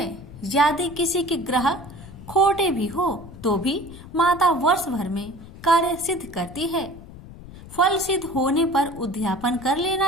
यदि किसी के ग्रह खोटे भी हो तो भी माता वर्ष भर में कार्य सिद्ध करती है। फल सिद्ध होने पर उद्यापन कर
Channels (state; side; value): noise; left; rumble, 16 dB below the sound